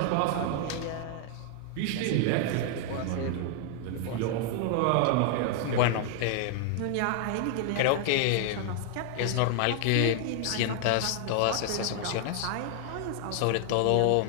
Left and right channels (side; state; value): both; different; correlation 0.00